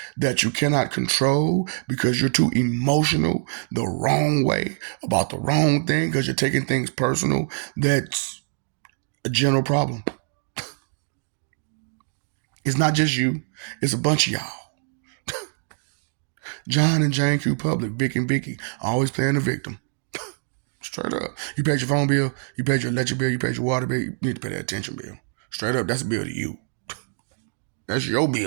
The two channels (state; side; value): silent; left; digital silence